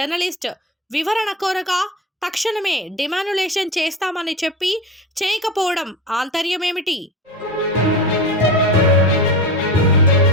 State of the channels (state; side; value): normal; both; correlation 0.27